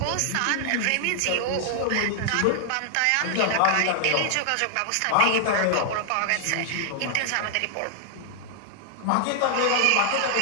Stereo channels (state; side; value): different; both; correlation 0.00